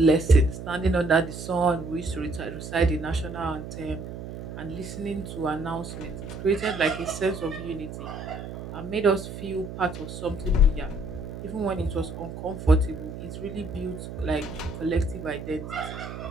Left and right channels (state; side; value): noise; right; hum, 9 dB below the sound